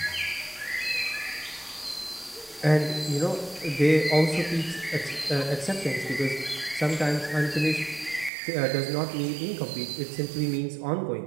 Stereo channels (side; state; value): left; drops out; at 8.3 s